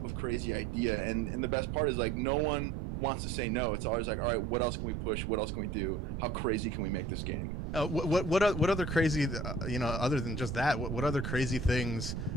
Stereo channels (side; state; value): right; noise; rumble, 3 dB below the sound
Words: of crazy idea. And the best part is no one wants to say no. It's always all right, what else can we push? What else can we do? How crazy can we make this game? What other crazy, other than just that, what other crazy things